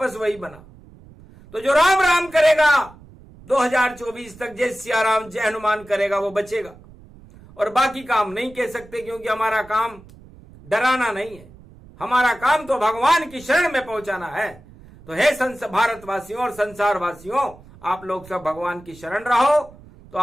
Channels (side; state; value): right; noise; rumble, 22 dB below the sound